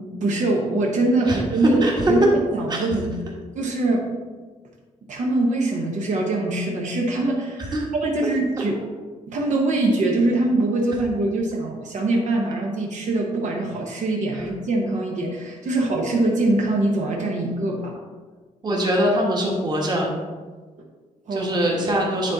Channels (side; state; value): both; normal; correlation 0.67